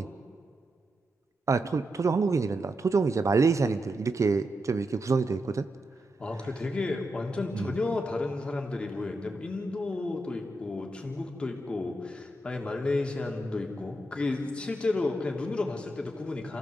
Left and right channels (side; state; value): both; normal; correlation 0.85